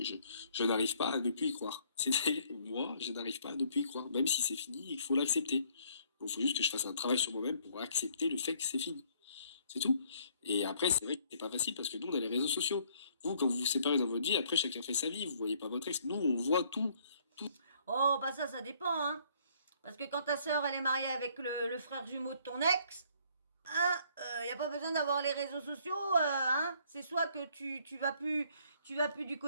je n'arrive pas à ne plus y croire. C'est-à-dire, moi, je n'arrive pas à ne plus y croire, même si c'est fini, il faut l'accepter. Il faut juste que je fasse un travail sur moi-même pour accepter le fait que c'est fini. C'est tout. Et après, c'est vrai que c'est pas facile parce que nous, on a les réseaux sociaux. Vous, quand vous vous séparez dans votre vie, après, chacun fait sa vie. Vous voyez pas votre ex. Nous, on voit tout. Oh, bah ça dépend, hein. Parce que quand ta sœur, elle est mariée avec le frère jumeau de ton ex, hein, y a pas besoin d'avoir les réseaux sociaux, hein. C'est soit que tu vas plus du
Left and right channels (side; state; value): both; inverted; correlation -0.62